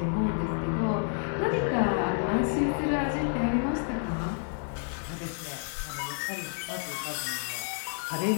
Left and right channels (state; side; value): silent; right; 58 dB below the other